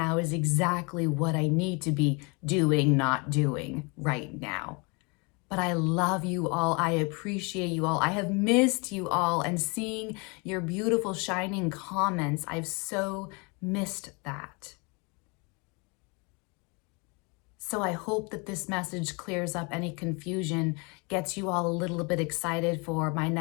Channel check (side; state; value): right; quieter; 30.5 dB